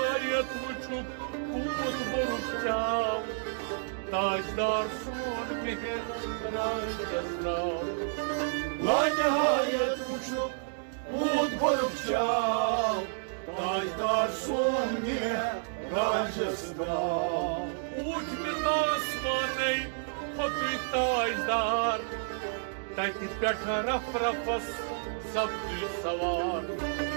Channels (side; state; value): left; silent; digital silence